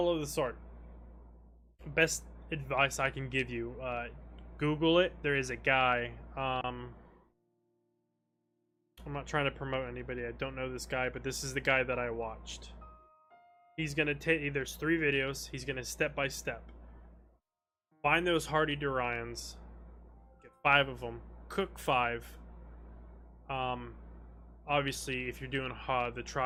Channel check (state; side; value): identical; both; correlation 1.00